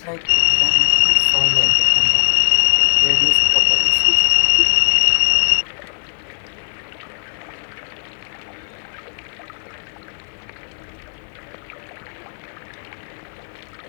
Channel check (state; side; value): silent; right; 63 dB below the other